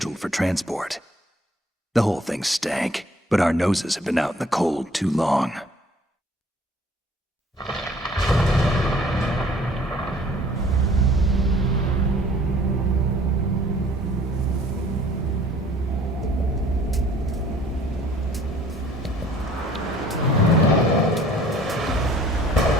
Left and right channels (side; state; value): both; normal; correlation 0.55